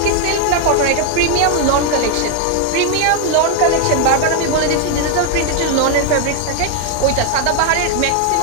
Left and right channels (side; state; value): both; different; correlation 0.01